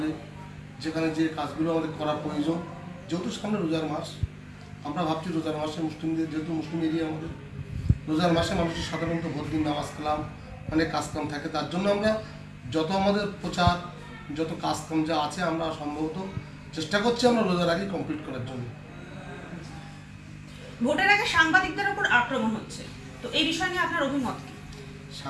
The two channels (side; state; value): both; identical; correlation 1.00